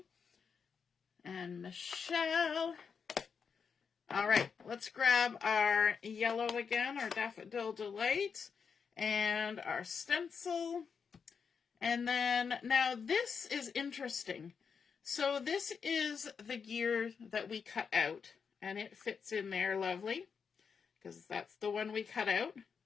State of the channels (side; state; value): right; quieter; 6.1 dB